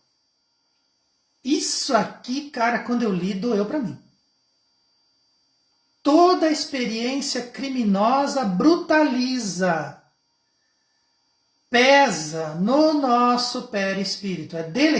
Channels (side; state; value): both; identical; correlation 1.00